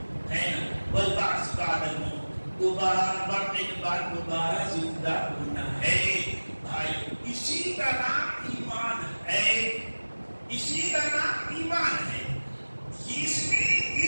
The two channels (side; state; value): both; inverted; correlation -1.00